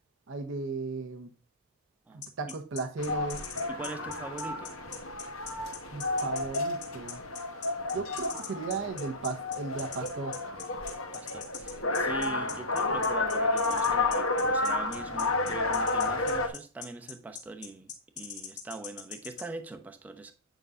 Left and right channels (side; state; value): both; normal; correlation -0.19